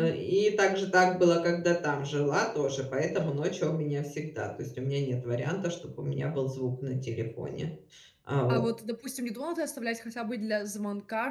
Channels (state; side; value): identical; both; correlation 1.00